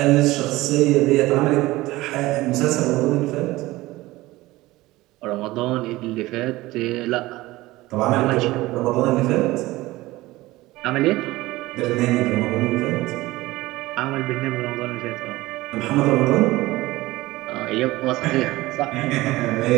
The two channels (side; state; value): left; quieter; 18.8 dB